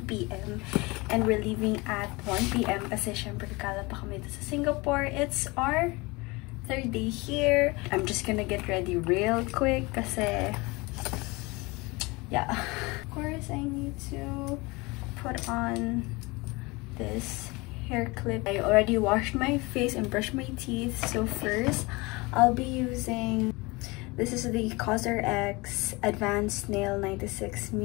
p.m. and we're leaving at 1 p.m. kasi syempre kakala pa kami dito sa Singapore. It's our third day here. I'm just gonna get ready real quick kasi yeah. Of course, I need to put on this hair clip. I already washed my face and brushed my teeth. So first, I'll be using, this is the CosRX Advanced Nail 96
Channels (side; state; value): right; quieter; 24.7 dB